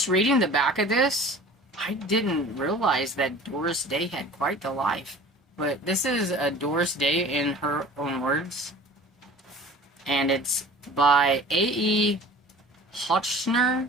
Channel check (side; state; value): both; normal; correlation 0.43